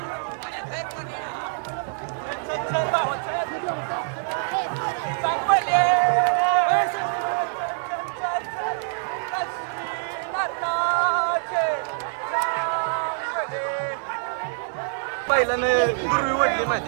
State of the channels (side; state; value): left; silent; digital silence